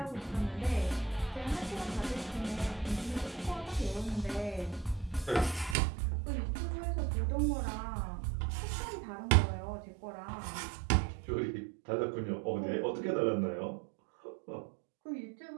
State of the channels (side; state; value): left; drops out; at 5.8 s